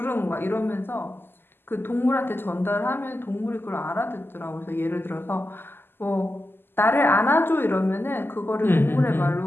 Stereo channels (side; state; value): right; late; 0.10 ms